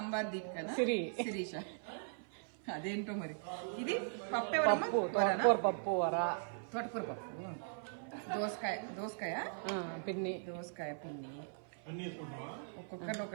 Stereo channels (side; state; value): left; silent; 52 dB below the other